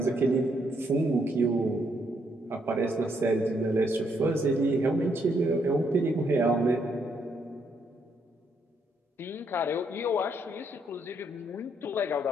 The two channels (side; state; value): both; normal; correlation 0.74